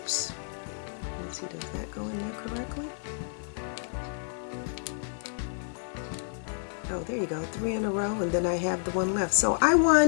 Let's see, does that go in there correctly? Oh, there you go, 3 in a row, and then I have the one left. So I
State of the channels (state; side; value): silent; right; 58 dB below the other